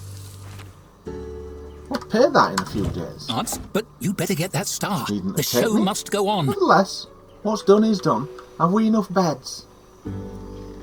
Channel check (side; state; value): both; identical; correlation 1.00